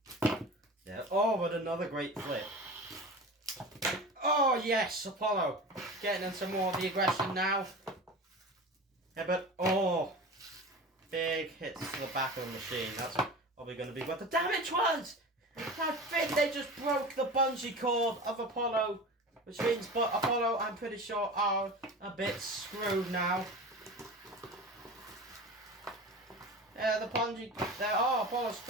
Yeah. Oh, but another great flip. Oh, yes, Apollo. Getting into more of the aggression now. Yeah, but big hits to the back of the machine. That's probably going to be what the damage was. I think they just broke the bungee cord of Apollo, which means Apollo, I'm pretty sure, are a bit screwed now. Yeah, the bungee. Apollo's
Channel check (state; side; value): normal; both; correlation 0.33